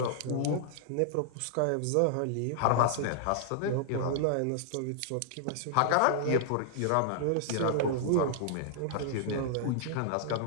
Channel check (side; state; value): both; different; correlation -0.01